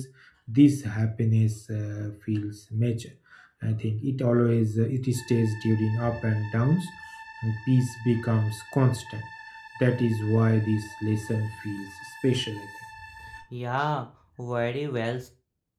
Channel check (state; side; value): identical; both; correlation 1.00